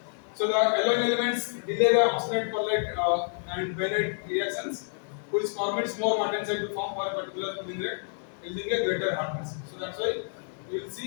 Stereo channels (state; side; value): silent; right; digital silence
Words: So the alloying elements delay the oxidate perlite and Behera reactions, which permits more martensite to form for a particular cooling rate, yielding a greater hardness. So that's why you will